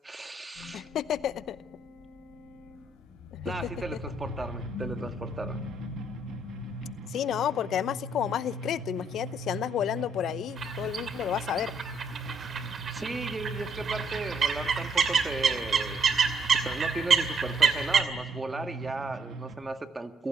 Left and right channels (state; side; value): normal; both; correlation 0.70